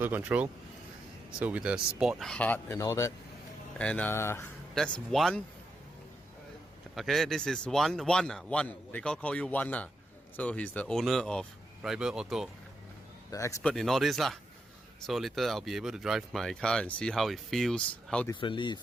control, so with the sport hard and all that. And that's one. Okay, this is one. They call you one. So he's the owner of Rival Auto, the expert in all this lah. So later I'll be able to drive my car and see how it feels, how differently it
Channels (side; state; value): both; normal; correlation 0.83